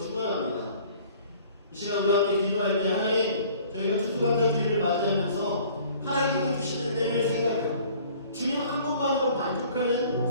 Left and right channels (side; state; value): both; inverted; correlation -0.52